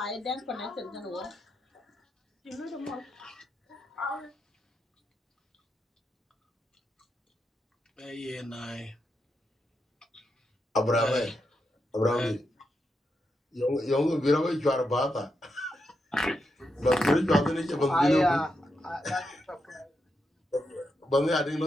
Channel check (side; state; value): both; normal; correlation 0.84